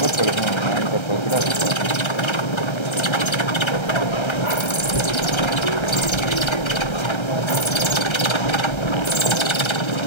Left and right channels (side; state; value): right; late; 1.3 ms